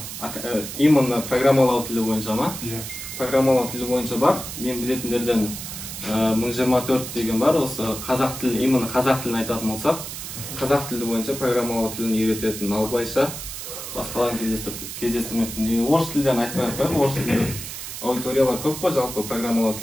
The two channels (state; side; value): noise; right; hiss, 8 dB below the sound